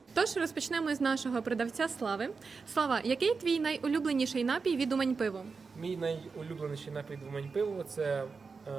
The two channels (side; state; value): left; quieter; 4.8 dB